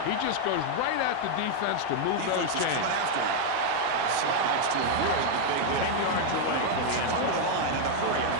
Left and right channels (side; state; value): both; different; correlation 0.00